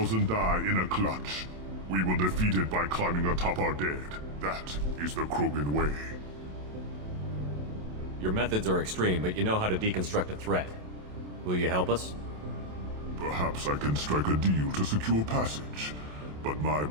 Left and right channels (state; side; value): late; left; 27 ms